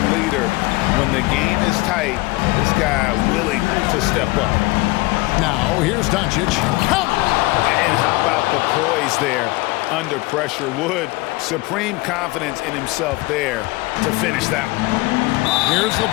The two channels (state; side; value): quieter; right; 21.9 dB